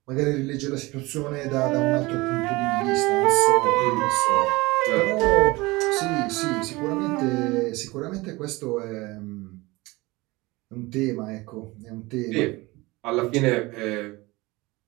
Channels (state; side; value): quieter; left; 22.1 dB